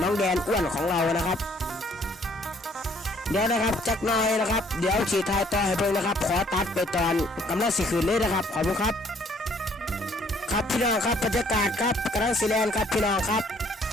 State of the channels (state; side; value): normal; both; correlation 0.62